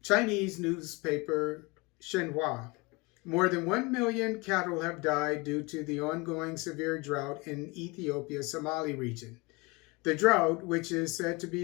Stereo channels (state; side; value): quieter; right; 25.9 dB